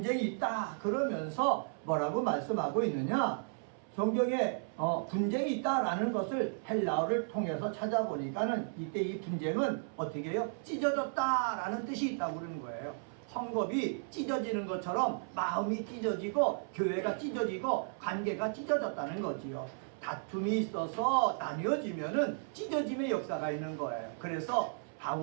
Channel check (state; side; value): silent; left; 55 dB below the other